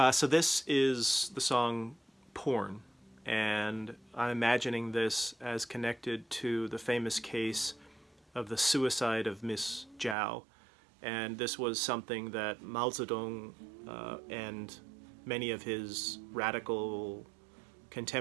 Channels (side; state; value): left; drops out; at 10.2 s